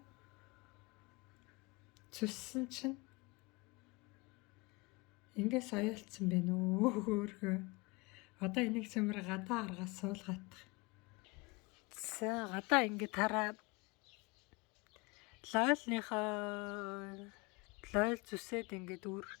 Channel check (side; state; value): right; quieter; 26.5 dB